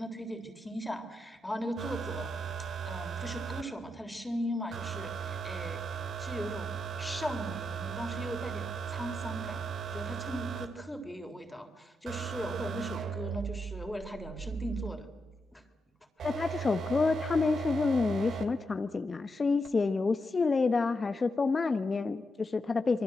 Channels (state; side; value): normal; both; correlation 0.84